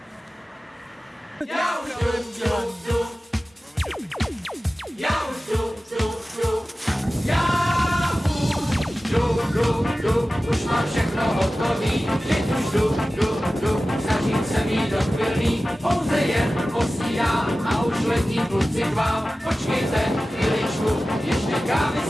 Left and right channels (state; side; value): normal; both; correlation 0.96